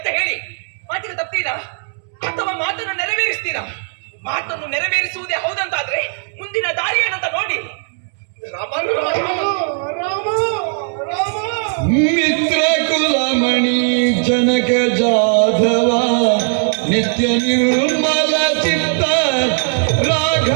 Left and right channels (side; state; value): left; silent; 68 dB below the other